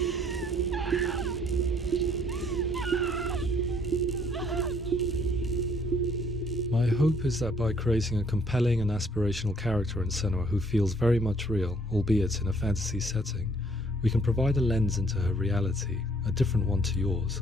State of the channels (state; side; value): normal; both; correlation 0.63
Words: My hope is that by creating a compelling and aspirational character in Senua who feels very much real, albeit in a fantasy setting, we can provide a lens into her reality, a different one to yours,